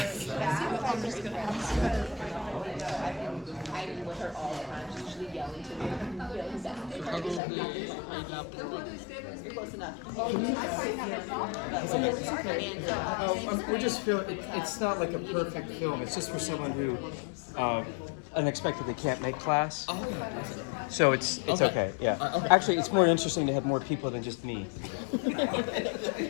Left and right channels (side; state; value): right; drops out; at 7.4 s